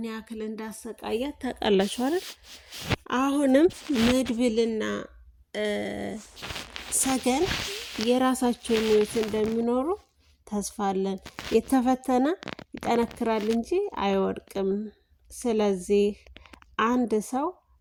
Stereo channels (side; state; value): both; identical; correlation 1.00